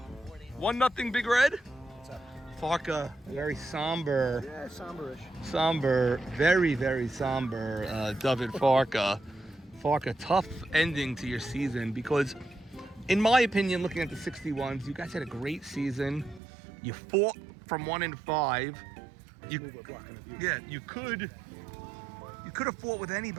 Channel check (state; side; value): drops out; left; at 16.4 s